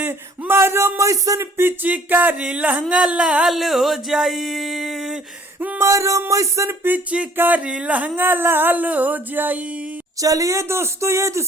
मैसन पिचकारी लहंगा लाल हो जाई। मारो मैसन पिचकारी लहंगा लाल हो जाई। चलिए दोस्तों, ये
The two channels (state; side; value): normal; both; correlation 0.57